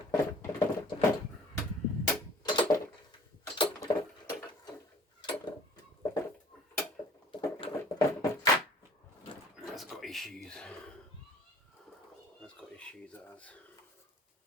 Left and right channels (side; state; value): both; normal; correlation 0.51